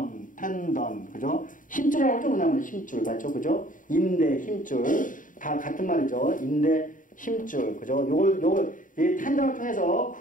그죠? 힘줄이라고 하죠? 뭐냐면 힘줄, 맞죠? 그죠? 인대, 힘줄. 다 같은 말이죠. 인대, 힘줄, 그죠? 이 텐던을 통해서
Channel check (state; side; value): late; right; 0.38 ms